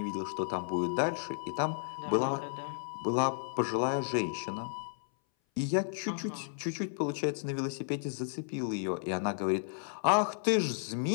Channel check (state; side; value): silent; right; 56 dB below the other